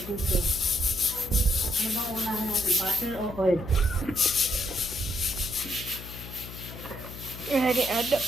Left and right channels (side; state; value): left; noise; hum, 12 dB below the sound